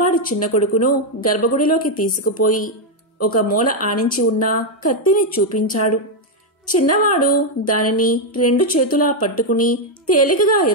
చిన్న కొడుకును గర్భగుడిలోకి తీసుకుపోయి ఒక మూల ఆనించి ఉన్న కత్తిని చూపించాడు. చిన్నవాడు దానిని 2 చేతులా పట్టుకుని తేలికగా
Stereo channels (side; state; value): both; normal; correlation 0.02